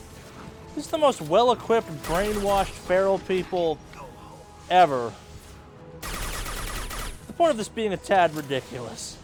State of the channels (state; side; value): identical; both; correlation 1.00